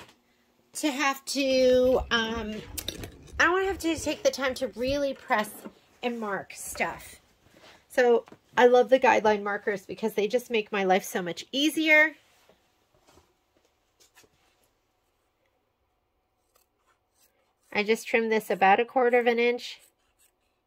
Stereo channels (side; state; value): both; identical; correlation 1.00